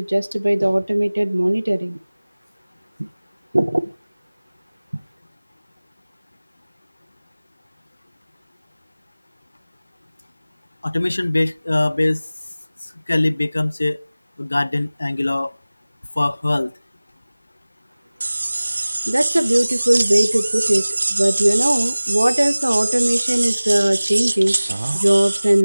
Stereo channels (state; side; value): inverted; both; correlation -0.99